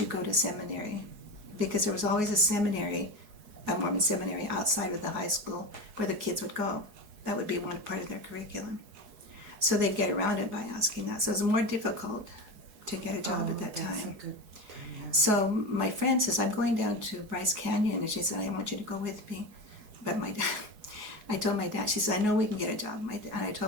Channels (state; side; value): late; left; 4.7 ms